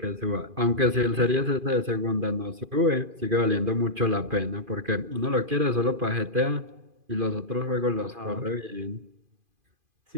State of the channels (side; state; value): left; late; 2.5 ms